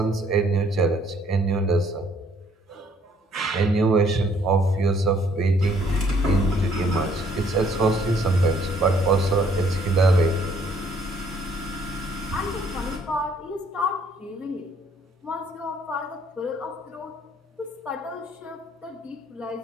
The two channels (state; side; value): normal; both; correlation 0.64